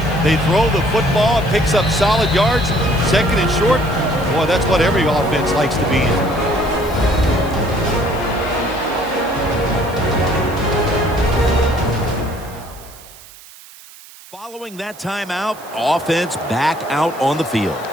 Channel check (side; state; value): right; noise; hiss, 20 dB below the sound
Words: They throw the football, it picks up solid yards. Second and short. Boy, that's what every offense likes to be in. Following that timeout, offense back out on the field.